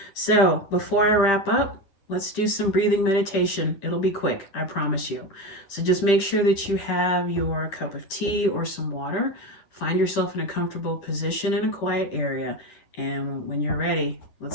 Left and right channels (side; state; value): right; late; 10 ms